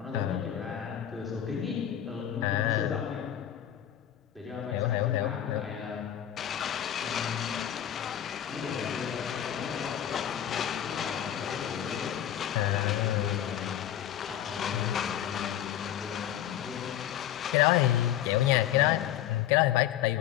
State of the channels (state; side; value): quieter; right; 10.9 dB